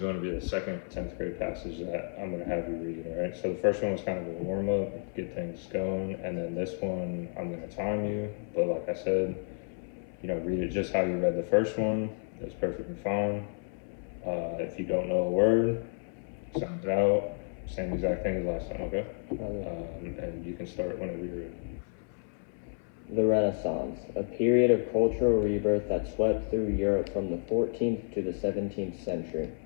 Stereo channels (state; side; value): silent; right; 57 dB below the other